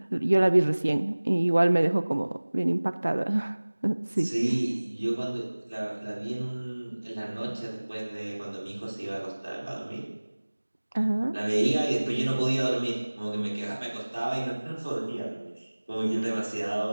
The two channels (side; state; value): both; inverted; correlation -1.00